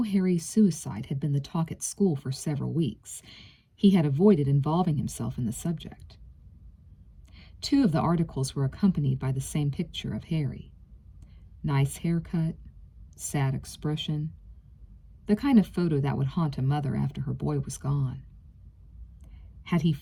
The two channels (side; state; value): both; identical; correlation 1.00